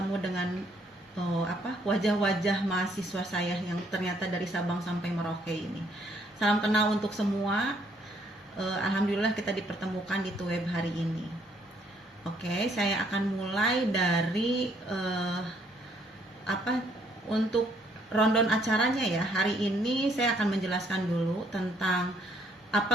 dengan wajah-wajah mahasiswa saya yang ternyata dari Sabang sampai Merauke ini. Salam kenal untuk semua. Alhamdulillah kita dipertemukan di Tuweb hari ini. Oke, saya akan mulai dari untuk rundown acaranya ya. Hari ini saya akan menjelaskan dulu tentang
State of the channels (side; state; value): both; normal; correlation 0.67